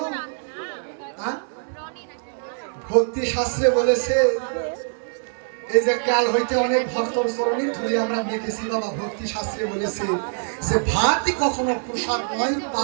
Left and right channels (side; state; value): left; silent; digital silence